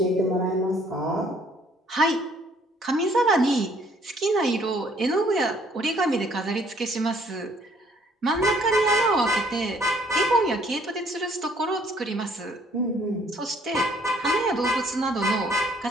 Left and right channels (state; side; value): normal; both; correlation 0.62